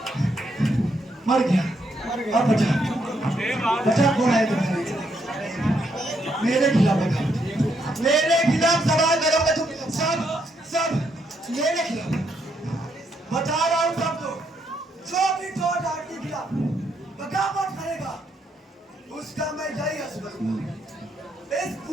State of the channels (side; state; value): both; normal; correlation 0.76